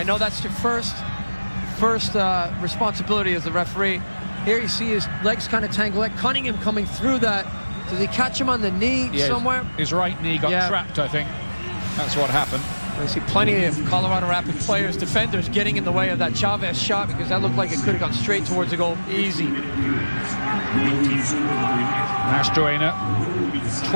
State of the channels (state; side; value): inverted; both; correlation -1.00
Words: know that's your first responsibility as the referee. Here you see his legs kind of tangle. Like Cunningham coming through that. Did he catch him on the knee somewhere? His right knee got trapped, I think. That's what happened. I see plenty of Colorado Rapids players, defenders, getting in the way of that Chavez shot, because that looked like it could have gone straight towards the goal. Easy. Mastroeni